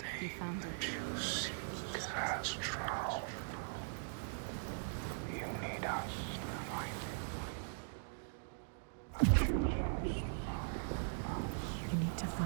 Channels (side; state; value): left; silent; digital silence